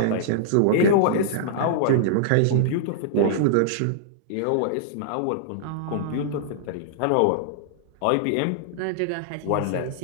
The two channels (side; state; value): both; different; correlation -0.01